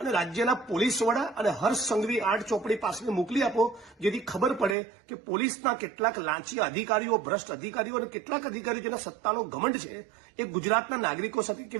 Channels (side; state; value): left; drops out; at 4.8 s